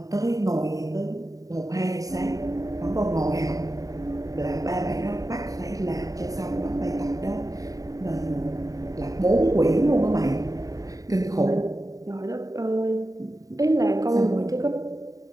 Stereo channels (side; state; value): left; late; 0.17 ms